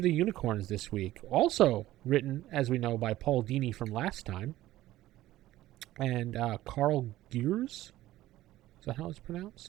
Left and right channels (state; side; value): quieter; left; 15.4 dB